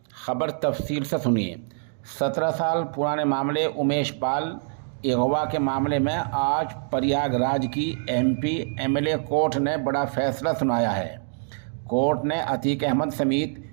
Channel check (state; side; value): silent; left; digital silence